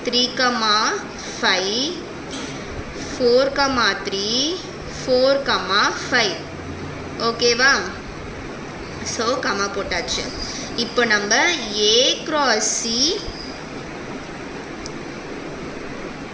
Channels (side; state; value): both; identical; correlation 1.00